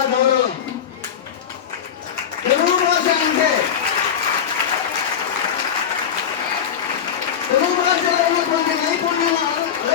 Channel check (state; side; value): quieter; right; 8.3 dB